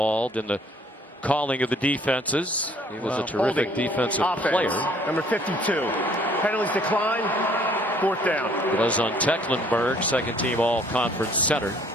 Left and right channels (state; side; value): normal; both; correlation 0.59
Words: in the calling of the defenses. He was a terrific defensive player. Number 52. Penalties decline. 4th down. It was on Tecklenburg, second team all-conference center.